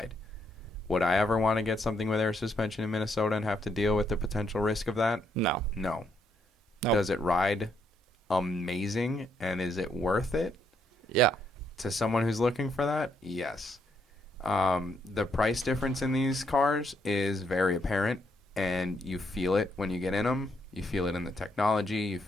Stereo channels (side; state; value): both; normal; correlation 0.75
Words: Would I ever want to get something with air suspension in Minnesota and have to deal with the potential risk of that? No. No. Nope. Does it ride amazing, and is it worth it? Yeah. To someone who's looking for that? Yes. The price difference in these cars is very apparent, and you feel it when you get in them. You feel it in the technology. You